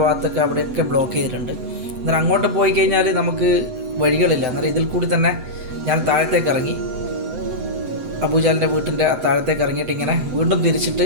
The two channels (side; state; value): left; late; 7.8 ms